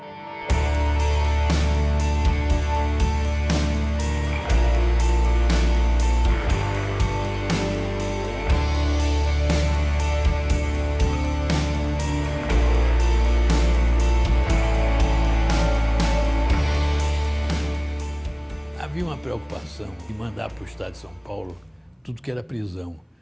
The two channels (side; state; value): both; identical; correlation 1.00